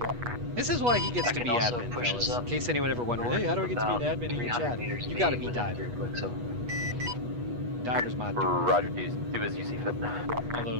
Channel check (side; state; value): left; late; 8.3 ms